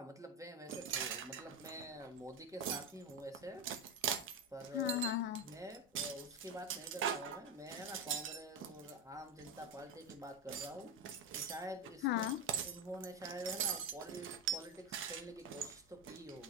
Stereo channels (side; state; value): both; normal; correlation 0.14